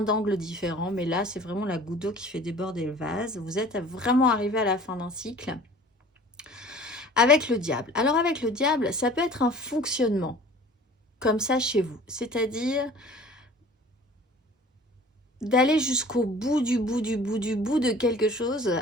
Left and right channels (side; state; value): both; normal; correlation 0.46